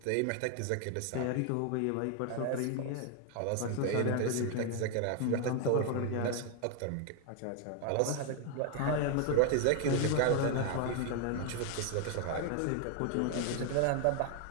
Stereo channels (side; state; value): both; different; correlation 0.01